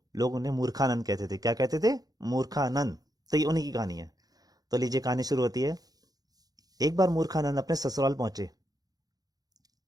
लोग उन्हें मूर्खानंद कहते थे। क्या कहते थे? मूर्खानंद। तो ये उन्हीं की कहानी है। तो लीजिए, कहानी शुरू होती है। एक बार मूर्खानंद अपने ससुराल पहुंचे।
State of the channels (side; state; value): left; late; 0.18 ms